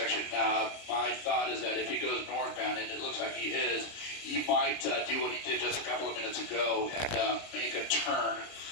My thought is that if he goes northbound, and it looks like he is, he might do what he did just a couple of minutes ago and make a turn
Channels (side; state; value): right; late; 30 ms